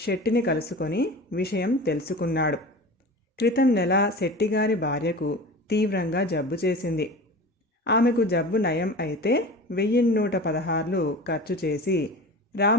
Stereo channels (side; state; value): both; normal; correlation 0.34